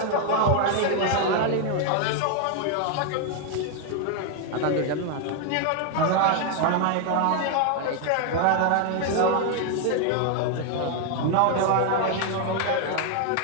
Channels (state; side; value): different; both; correlation 0.00